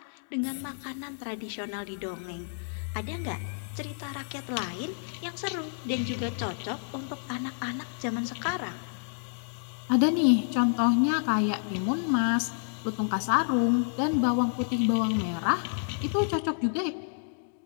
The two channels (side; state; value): right; silent; digital silence